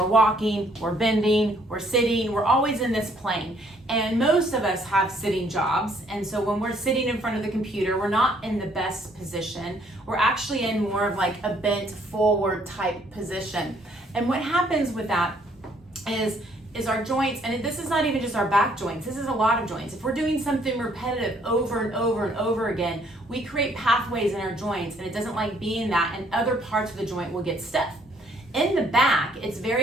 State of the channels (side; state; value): both; normal; correlation 0.65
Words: walking, we're bending, we're sitting, we're always in this plane. And most of us have sitting jobs. And so when we're sitting in front of the computer, we're not in the best position. We're actually in more of like a bent forward type position. And what happens with that is our joints, and this is not even just our back joints, this is a lot of joints. If we're doing something repetitive over and over and over again, we create pathways in our joints, and it doesn't like being that, and other parts of the joint will get stiff. In the back, it's